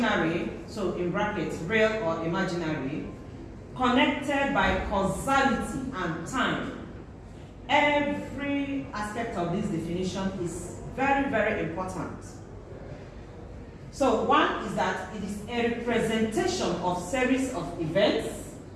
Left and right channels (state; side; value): identical; both; correlation 1.00